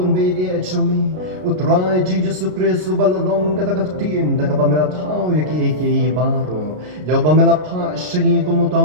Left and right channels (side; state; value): left; late; 33 ms